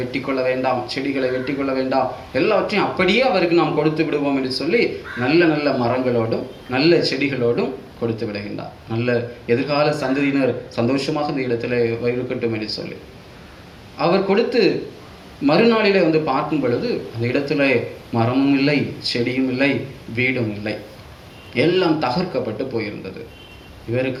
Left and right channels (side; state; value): both; identical; correlation 1.00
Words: வெட்டி கொள்ள வேண்டாம், செடிகளை வெட்டி கொள்ள வேண்டாம், எல்லாவற்றையும் அப்படியே அவருக்கு நாம் கொடுத்து விடுவோம் என்று சொல்லி நல்ல நல்ல மரங்களோடும் நல்ல செடிகளோடும் கொடுத்து விடுகின்றார். நல்ல எதிர்கால சந்ததியினர் சந்தோஷமாக இந்த இடத்துல இருக்கட்டும் என்று சொல்லி அவர் கொடுத்து மறுநாளிலே வந்து பார்க்கும் பொழுது அந்த இடத்துல மரமும் இல்லை, செடியும் இல்லை, வீடும் இல்லை, எல்லாம் தகர்க்கப்பட்டு போயிருந்தது.